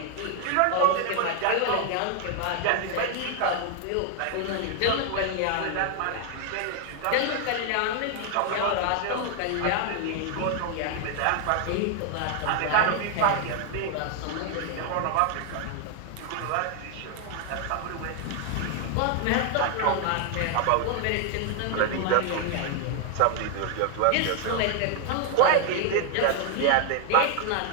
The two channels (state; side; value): different; both; correlation 0.00